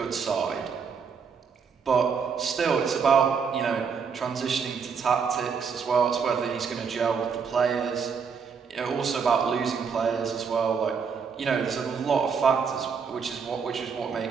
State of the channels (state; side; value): quieter; left; 6.1 dB